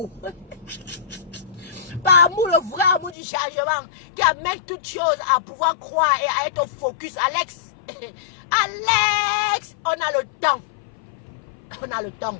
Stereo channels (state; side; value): drops out; right; at 3.2 s